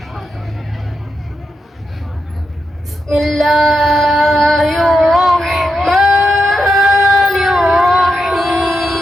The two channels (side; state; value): both; normal; correlation 0.85